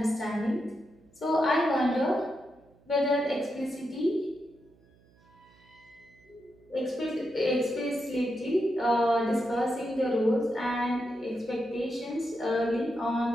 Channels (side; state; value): right; noise; hum, 30 dB below the sound